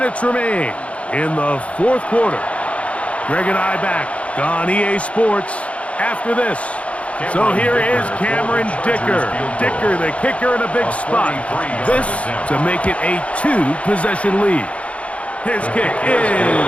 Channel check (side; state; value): right; late; 0.063 ms